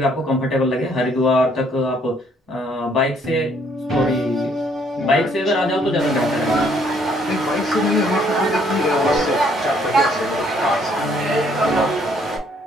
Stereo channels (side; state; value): both; normal; correlation 0.65